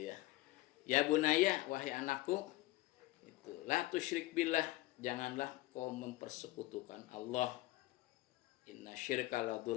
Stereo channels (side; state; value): right; quieter; 18.0 dB